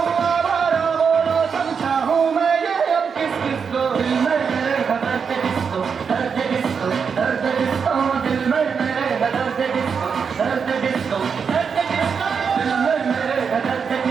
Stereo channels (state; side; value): quieter; left; 6.2 dB